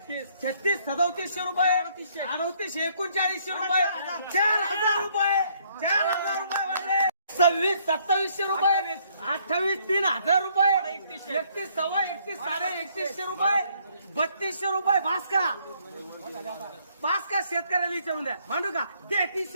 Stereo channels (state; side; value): inverted; both; correlation -0.67